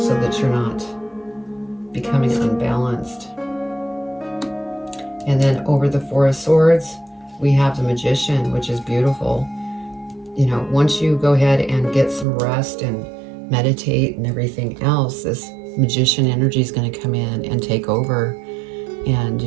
so that you're not becoming unbalanced. And then over the Four of Swords, we have the Magician, which is beautiful. You know, once you go ahead and get some rest and meditate and everything else, this Magician energy is going to come in and take over. And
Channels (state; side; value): drops out; left; at 12.2 s